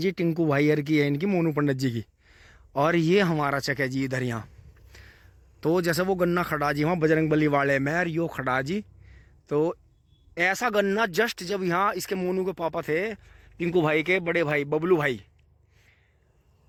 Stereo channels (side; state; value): both; identical; correlation 1.00